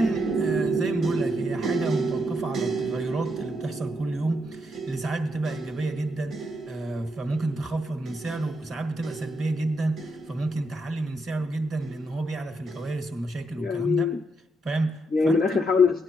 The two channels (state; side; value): normal; both; correlation 0.79